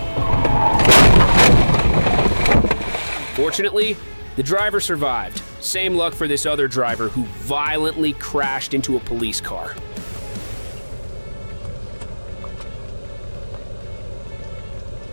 Fortunately, the driver survived. Same luck for this other driver who violently crashed into a police car.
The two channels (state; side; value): inverted; both; correlation -1.00